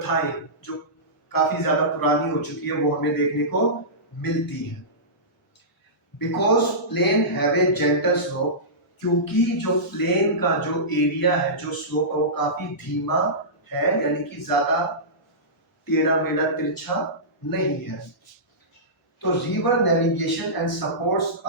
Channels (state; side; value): normal; both; correlation -0.18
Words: जो काफी ज्यादा पुरानी हो चुकी है वो हमें देखने को मिलती है। Because plain have a gentle slope, क्योंकि जो प्लेन का जो एरिया है, जो स्लोप है वो काफी धीमा है, यानी कि ज्यादा टेढ़ा मेढ़ा तिरछा नहीं है। तो river navigation and supports